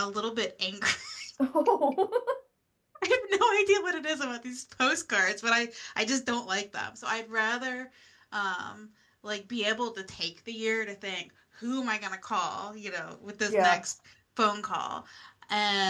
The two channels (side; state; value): both; identical; correlation 1.00